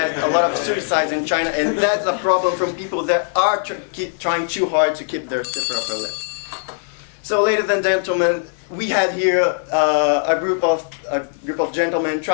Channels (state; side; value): silent; right; 61 dB below the other